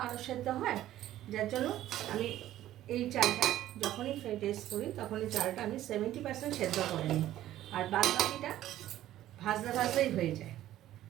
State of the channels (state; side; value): quieter; left; 13.5 dB